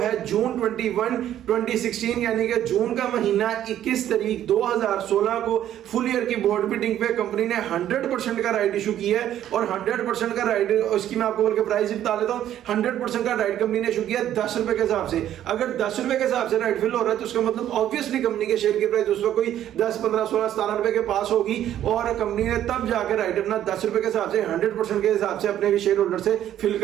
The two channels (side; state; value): left; quieter; 11.5 dB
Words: जून 21 2016 यानी कि जून का महीना 21 तारीख 2016 को फुल ईयर की बोर्ड मीटिंग पे कंपनी ने 100% का राइट इशू किया है और 100% का राइट, उसकी मैं आपको बोल के प्राइस बता देता हूं। 100% का राइट कंपनी ने इशू किया 10 रुपए के हिसाब से। अगर 10 रुपए के हिसाब से राइट फिल हो रहा है तो उसका मतलब ऑब्वियसली कंपनी के शेयर की प्राइस उस वक्त कोई 10, 15, 16, 17 रुपए के पास होगी और कंपनी ने तब जाकर राइट अपना 10 रुपए के हिसाब से 100% के हिसाब से अपने शेयर होल्डर से फिल